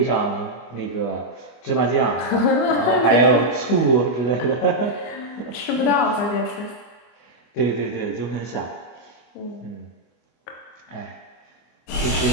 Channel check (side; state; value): right; late; 24 ms